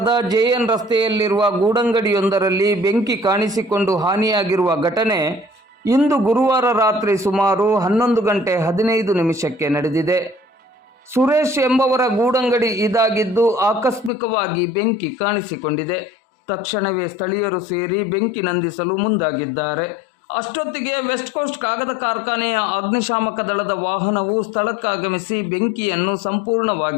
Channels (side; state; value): right; drops out; at 14.1 s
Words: ಜೆಎನ್ ರಸ್ತೆಯಲ್ಲಿರುವ ಗೂಡಂಗಡಿಯೊಂದರಲ್ಲಿ ಬೆಂಕಿ ಕಾಣಿಸಿಕೊಂಡು ಹಾನಿಯಾಗಿರುವ ಘಟನೆ ಇಂದು ಗುರುವಾರ ರಾತ್ರಿ ಸುಮಾರು 11:15 ನಡೆದಿದೆ. ಸುರೇಶ್ ಎಂಬವರ ಗೂಡಂಗಡಿ ಇದಾಗಿದ್ದು ಆಕಸ್ಮಿಕವಾಗಿ ಬೆಂಕಿ ಕಾಣಿಸಿಕೊಂಡಿದೆ. ತಕ್ಷಣವೇ ಸ್ಥಳೀಯರು ಸೇರಿ ಬೆಂಕಿ ನಂದಿಸಲು ಮುಂದಾಗಿದ್ದಾರೆ. ಅಷ್ಟೊತ್ತಿಗೆ ವೆಸ್ಟ್ ಕೋಸ್ಟ್ ಕಾಗದ ಕಾರ್ಖಾನೆಯ ಅಗ್ನಿಶಾಮಕ ದಳದ ವಾಹನವು ಸ್ಥಳಕ್ಕಾಗಮಿಸಿ ಬೆಂಕಿಯನ್ನು